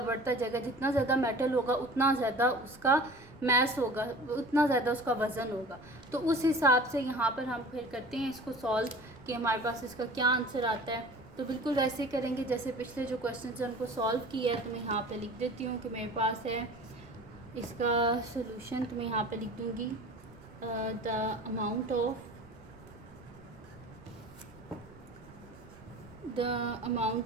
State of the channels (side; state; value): right; noise; rumble, 24 dB below the sound